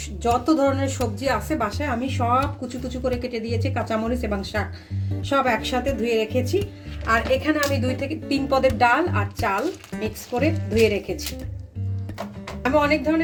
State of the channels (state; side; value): identical; both; correlation 1.00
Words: যত ধরনের সবজি আছে বাসায় আমি সব কুচু কুচু করে কেটে দিয়েছি, কাঁচামরিচ এবং শাক সব একসাথে ধুয়ে রেখেছি। আর এখানে আমি 2 থেকে 3 পদের ডাল আর চাল মিক্স করে ধুয়ে রেখেছি। আমি অনেক